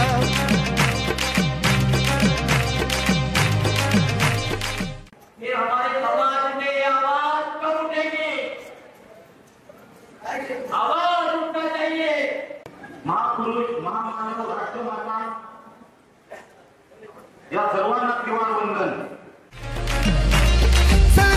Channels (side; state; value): both; identical; correlation 1.00